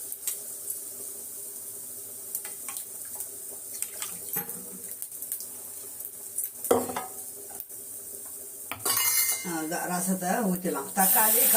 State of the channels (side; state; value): both; identical; correlation 1.00